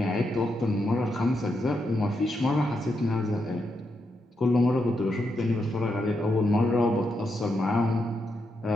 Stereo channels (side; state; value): both; normal; correlation 0.83